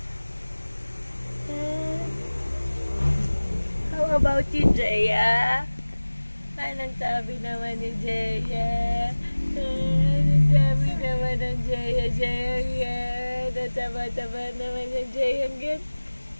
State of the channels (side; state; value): both; inverted; correlation -1.00